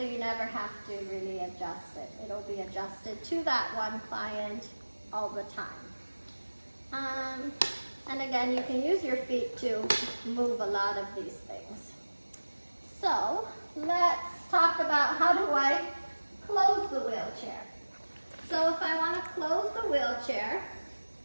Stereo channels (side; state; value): both; inverted; correlation -1.00